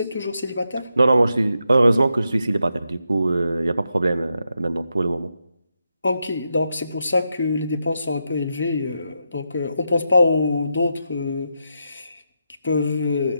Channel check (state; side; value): inverted; both; correlation -0.84